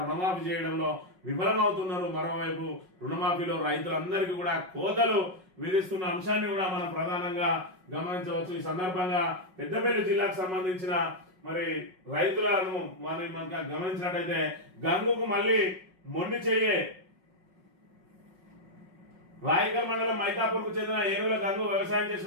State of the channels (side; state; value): left; late; 5.4 ms